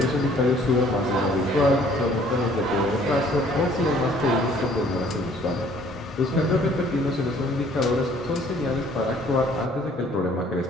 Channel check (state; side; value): normal; both; correlation 0.58